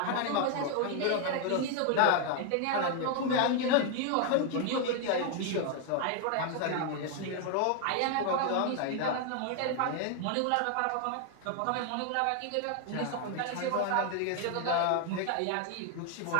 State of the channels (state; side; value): different; both; correlation 0.00